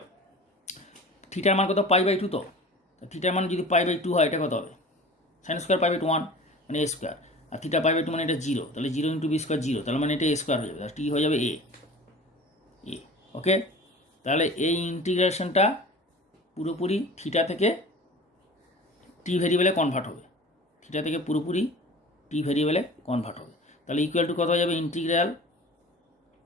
থিটার মান কত? π/2। তো থিটার মান যদি π/2 হয়, এটা কত হবে? সাইন স্কোয়ার π/2 1, মানে এ স্কোয়ার, আর থিটা π/2 মানে এটা 0, তাহলে 0 ইন্টু বি স্কোয়ার 0, তাহলে মানে এটা এ স্কোয়ার হয়ে যাবে, টি হয়ে যাবে এ। ওকে, তাহলে এই ইন্টিগ্রেশনটা পুরোপুরি থিটা থেকে টি ভেরিয়েবলে কনভার্ট হবে, থিটা থেকে পুরোপুরি টি ভেরিয়েবলে কনভার্ট হবে। তাহলে ইকুয়াল টু কত হয়ে যাবে? ইন্টিগ্রাল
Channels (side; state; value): both; normal; correlation 0.40